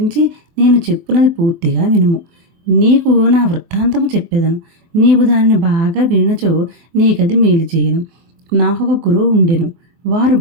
నేను చెప్పునది పూర్తిగా వినుము. నీకు నా వృత్తాంతము చెప్పెదను. నీవు దానిని బాగా వినచో నీకది మేలు చేయను. నాకొక గురువు ఉండెను. వారు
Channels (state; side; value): late; left; 23 ms